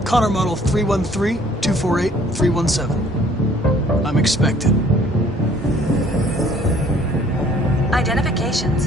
Connor model 313-248-317. I'm expected. Identification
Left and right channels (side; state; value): both; normal; correlation 0.57